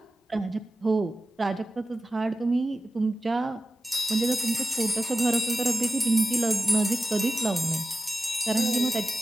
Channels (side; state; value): both; normal; correlation 0.94